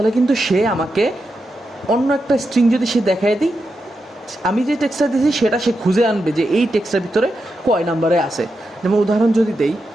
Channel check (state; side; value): normal; both; correlation 0.87